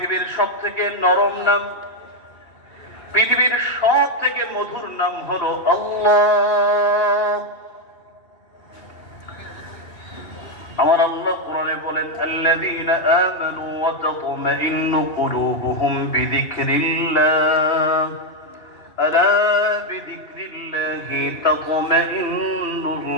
সব থেকে নরম নাম, পৃথিবীর সব থেকে মধুর নাম হলো আল্লাহ। আমার আল্লাহ কোরআনে বলেন, আল্লাযীনা আমানু ওয়া তাতমাইন্নু কুলুবুহুম বিযিকরিল্লাহ, আলা বিযিকরিল্লাহি তাতমাইন্নুল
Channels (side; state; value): right; late; 2.9 ms